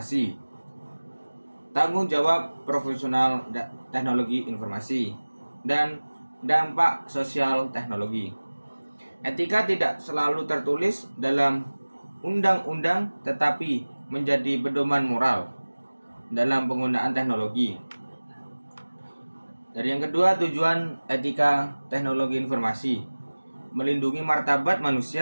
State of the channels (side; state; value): both; inverted; correlation -1.00